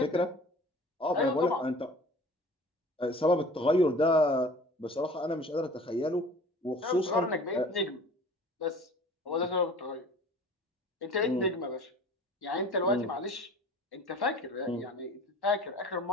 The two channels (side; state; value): both; normal; correlation 0.44